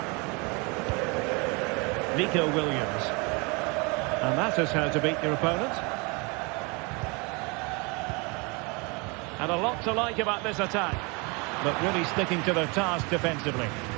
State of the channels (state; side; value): quieter; left; 29.7 dB